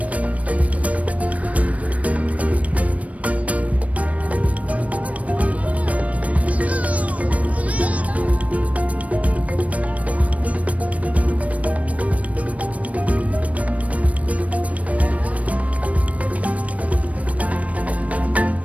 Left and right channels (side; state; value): left; late; 0.067 ms